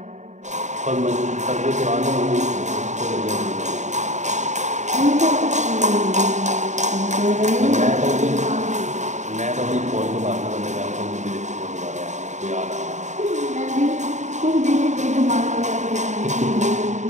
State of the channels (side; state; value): left; late; 0.34 ms